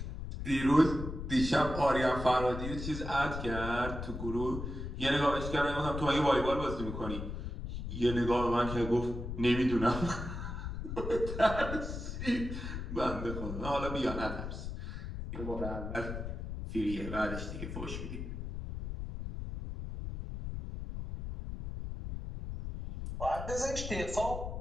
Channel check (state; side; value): noise; left; rumble, 6 dB below the sound